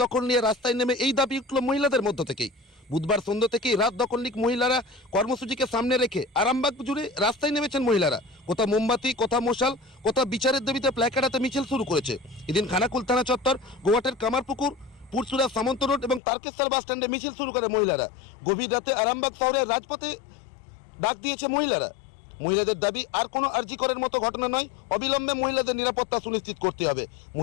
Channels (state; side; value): drops out; right; at 16.2 s